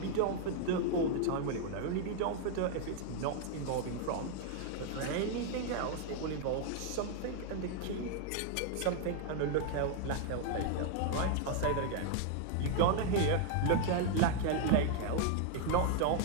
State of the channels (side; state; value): both; different; correlation 0.00